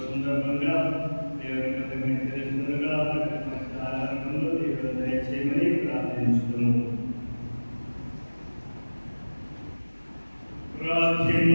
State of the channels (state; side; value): inverted; both; correlation -1.00